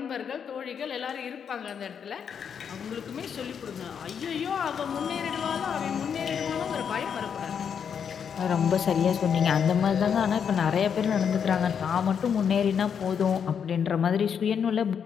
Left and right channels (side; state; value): right; quieter; 7.4 dB